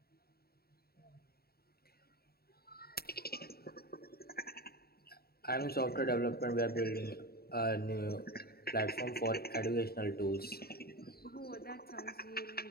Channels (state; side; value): late; right; 0.45 ms